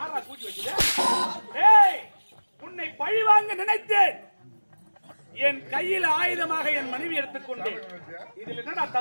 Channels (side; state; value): both; inverted; correlation -1.00